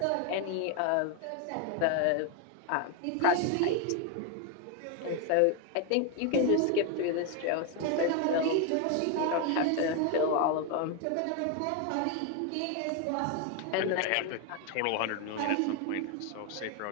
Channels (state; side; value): different; both; correlation 0.01